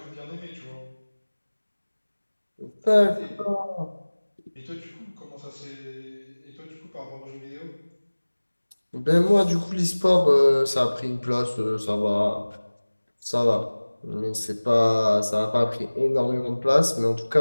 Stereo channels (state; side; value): inverted; both; correlation -1.00